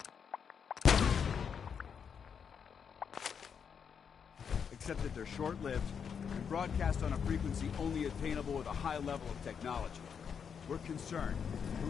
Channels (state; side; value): quieter; right; 7.0 dB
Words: Except that they're short-lived and broadcast on a frequency only attainable with a high level of technology. We're concerned